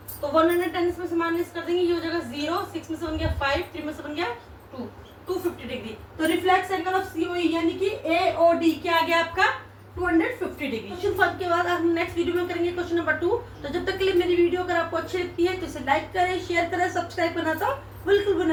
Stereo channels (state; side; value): identical; both; correlation 1.00